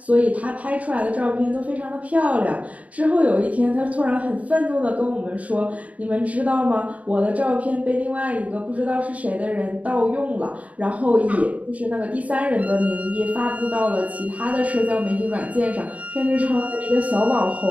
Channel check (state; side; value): late; left; 0.069 ms